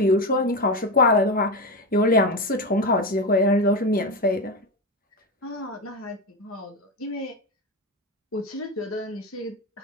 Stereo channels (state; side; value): normal; both; correlation 0.17